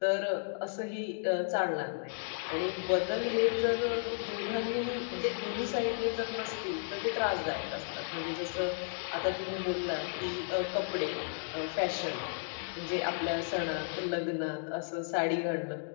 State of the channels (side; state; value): right; silent; digital silence